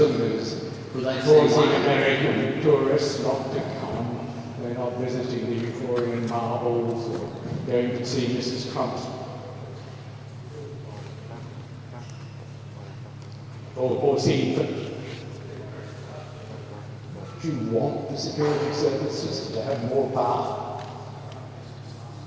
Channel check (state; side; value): identical; both; correlation 1.00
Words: is causing American tourists not to come. They're not visiting the Euphorian marbles or going to see Mrs. Trump's or seeing them. Do you want the security services to have more power?